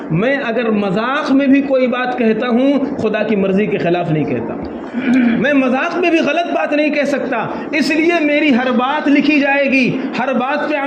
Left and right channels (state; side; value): identical; both; correlation 1.00